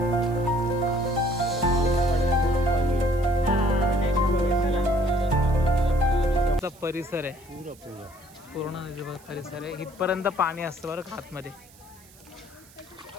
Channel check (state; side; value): noise; right; hiss, 25 dB below the sound